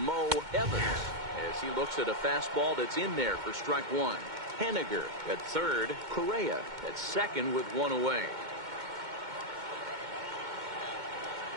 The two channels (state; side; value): late; left; 2.2 ms